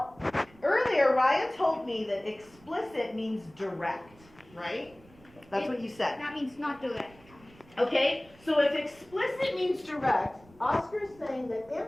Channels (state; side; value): noise; right; rumble, 26 dB below the sound